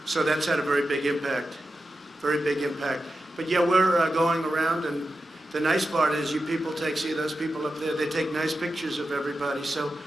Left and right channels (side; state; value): both; normal; correlation 0.91